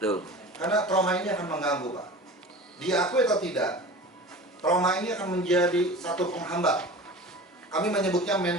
Karena trauma ini akan mengganggu, Pak. Diakui atau tidak, trauma ini akan menjadi satu penghambat. Kami menyebutnya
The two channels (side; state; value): both; normal; correlation 0.37